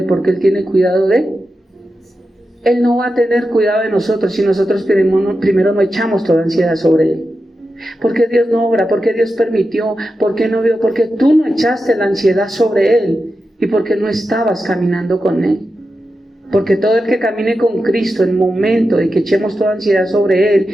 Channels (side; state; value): both; normal; correlation 0.90